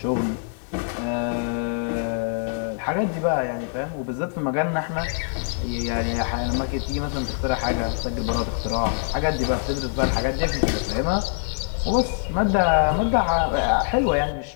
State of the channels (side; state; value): right; silent; digital silence